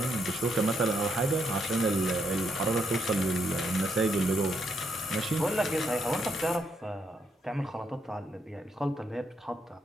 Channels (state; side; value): normal; both; correlation 0.77